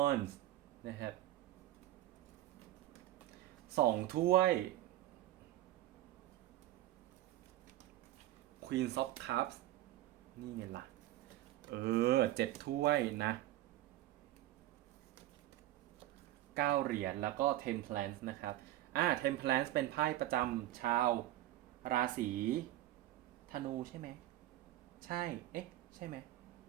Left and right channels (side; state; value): left; quieter; 14.6 dB